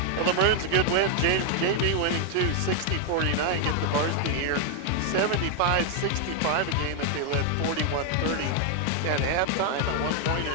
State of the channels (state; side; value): different; both; correlation 0.00